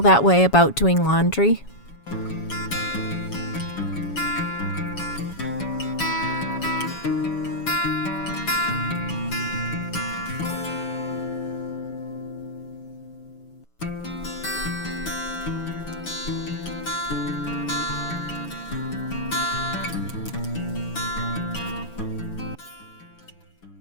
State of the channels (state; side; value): late; right; 7.1 ms